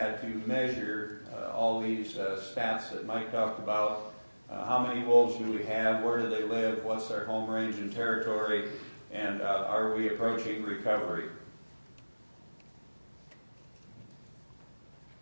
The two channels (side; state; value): both; inverted; correlation -1.00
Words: to measure all these stats that Mike talked about. How many wolves do we have? Where do they live? What's their home range and territory? And are we approaching recovery?